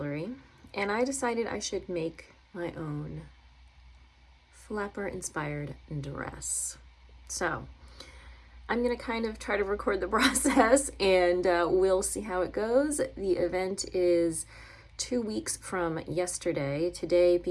and I decided I should make my own flapper inspired dress. So I'm gonna kind of try to record the process and we'll see how it goes. The event is 2 weeks from yesterday, today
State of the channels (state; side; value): identical; both; correlation 1.00